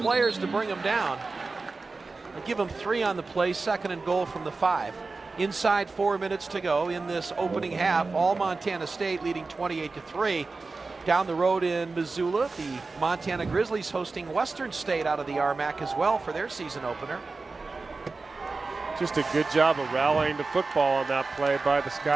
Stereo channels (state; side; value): quieter; left; 3.9 dB